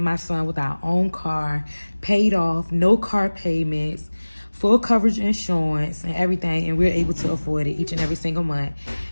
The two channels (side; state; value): both; inverted; correlation -1.00